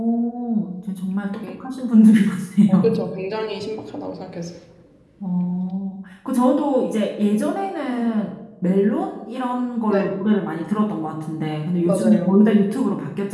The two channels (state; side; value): identical; both; correlation 1.00